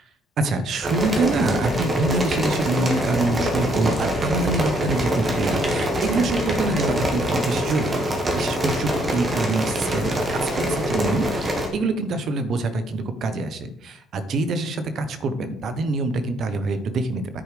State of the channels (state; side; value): normal; both; correlation 0.70